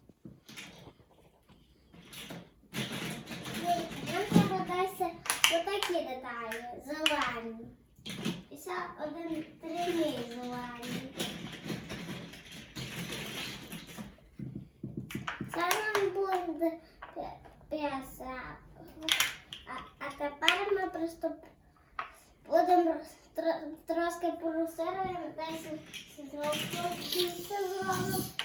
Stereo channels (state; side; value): identical; both; correlation 1.00